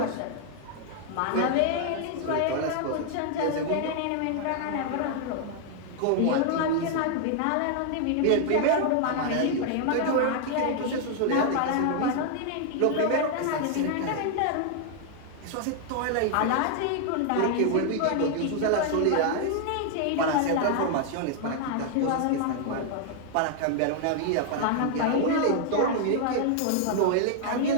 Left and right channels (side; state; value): both; different; correlation 0.00